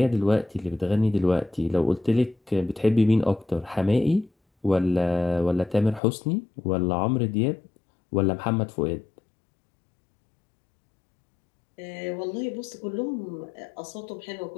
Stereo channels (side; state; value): right; drops out; at 6.0 s